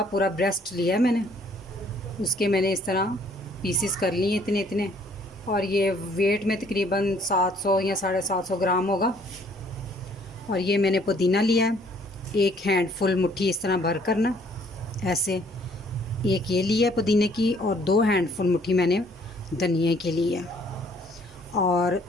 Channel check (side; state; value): both; normal; correlation 0.61